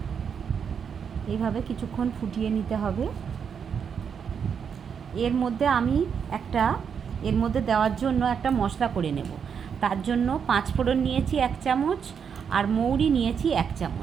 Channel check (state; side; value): quieter; left; 7.0 dB